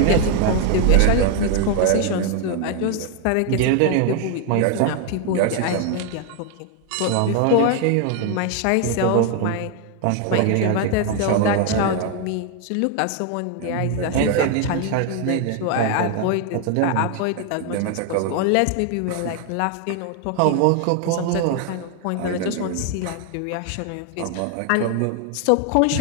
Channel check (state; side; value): different; both; correlation 0.01